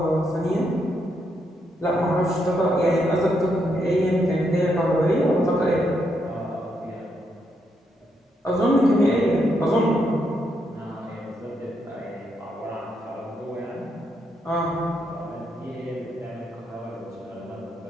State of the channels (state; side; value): normal; both; correlation 0.79